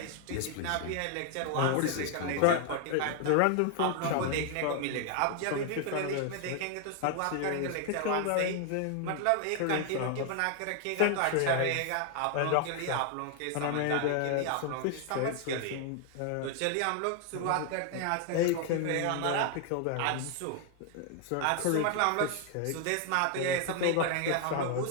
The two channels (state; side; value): different; both; correlation 0.00